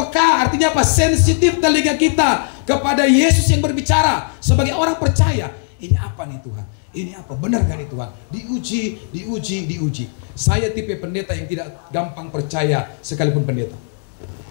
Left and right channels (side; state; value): right; silent; digital silence